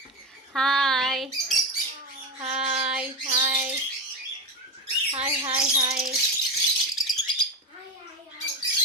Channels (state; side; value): normal; both; correlation 0.20